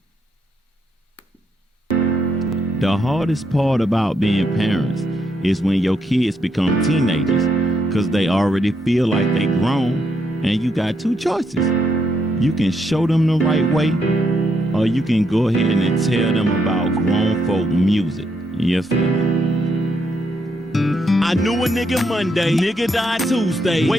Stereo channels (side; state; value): both; normal; correlation 0.77